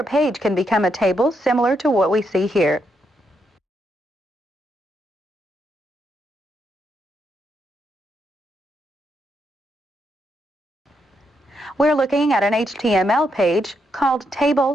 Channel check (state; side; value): normal; both; correlation 0.80